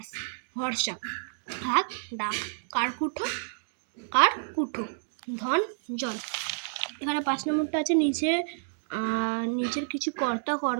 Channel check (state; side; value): silent; left; digital silence